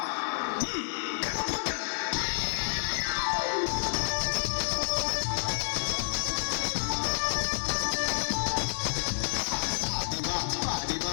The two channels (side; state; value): right; silent; 58 dB below the other